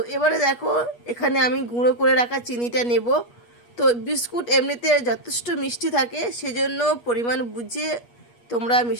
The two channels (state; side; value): late; right; 8.3 ms